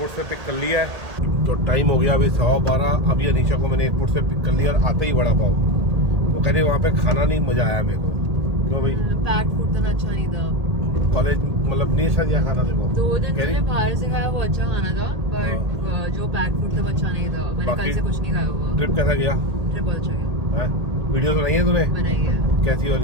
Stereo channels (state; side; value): late; left; 1.8 ms